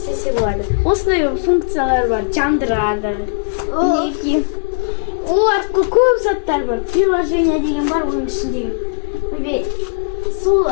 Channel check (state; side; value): silent; right; digital silence